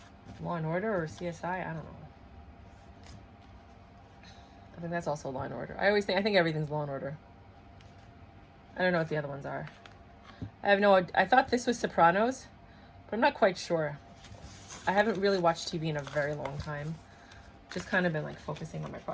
Law and Order or CSI. I don't know. I think that's also Law and Order. I think everything's Law and Order. I don't know what the other ones are. I thought this was Sopranos, but I'm not quite sure. I haven't really watched TV in a very long time. Just kind of been like focusing on my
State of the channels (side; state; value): both; identical; correlation 1.00